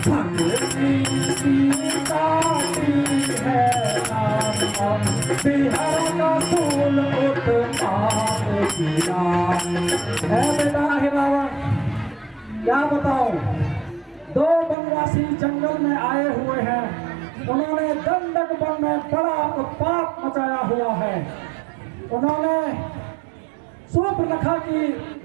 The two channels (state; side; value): drops out; left; at 14.8 s